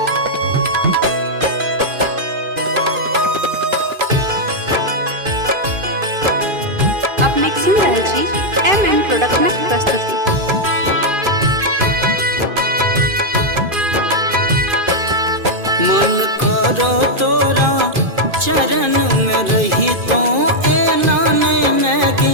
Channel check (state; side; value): late; left; 2.5 ms